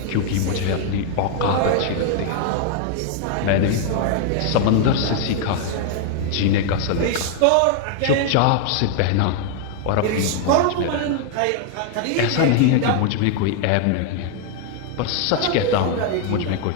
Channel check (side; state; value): both; different; correlation 0.00